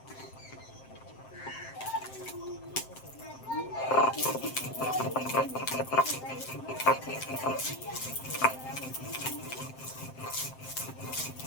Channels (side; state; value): right; late; 7.7 ms